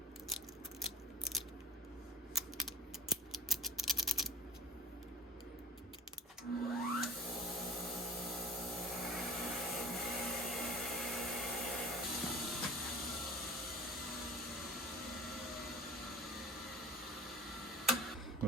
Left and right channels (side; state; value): both; normal; correlation 0.43